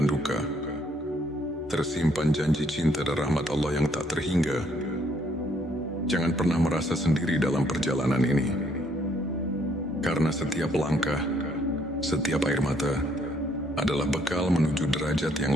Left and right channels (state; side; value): normal; both; correlation 0.68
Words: duka, tersimpan janji cinta dan rahmat Allah yang tak terhingga. Jangan pernah merasa sendiri dalam perjalanan ini, karena setiap langkah, setiap air mata adalah bekal menuju derajat